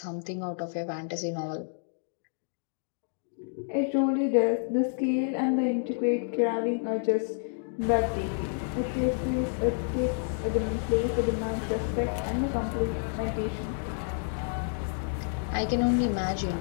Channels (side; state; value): right; silent; digital silence